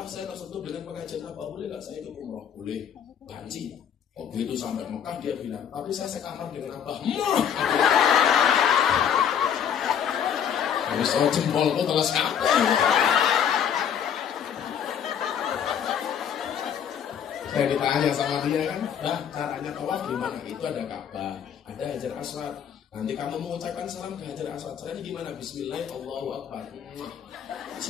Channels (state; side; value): quieter; right; 8.5 dB